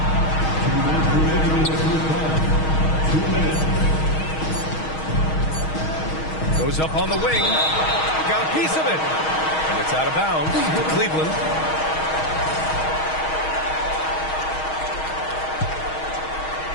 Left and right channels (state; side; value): late; right; 6.3 ms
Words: 2 minutes. Goes up on the wing. Got a piece of it. And it's out of bounds to Cleveland.